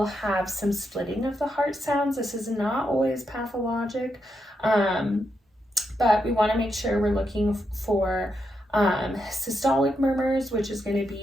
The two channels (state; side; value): normal; both; correlation 0.83